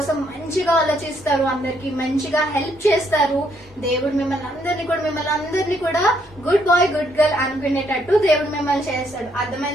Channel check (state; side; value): normal; both; correlation 0.71